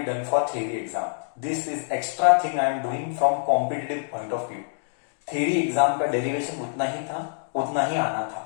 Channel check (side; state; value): right; silent; digital silence